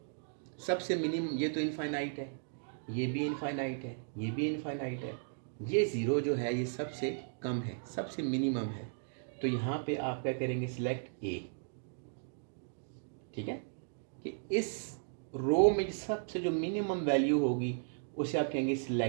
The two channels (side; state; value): left; silent; digital silence